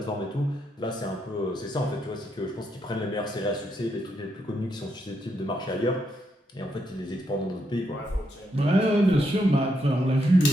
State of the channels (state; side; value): normal; both; correlation 0.79